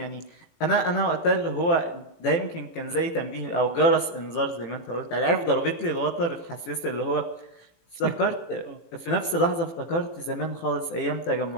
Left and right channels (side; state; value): right; late; 18 ms